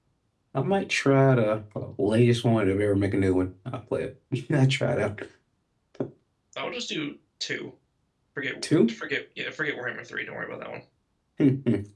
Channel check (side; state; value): both; identical; correlation 1.00